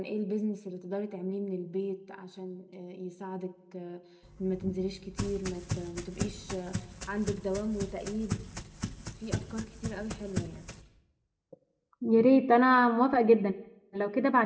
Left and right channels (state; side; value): identical; both; correlation 1.00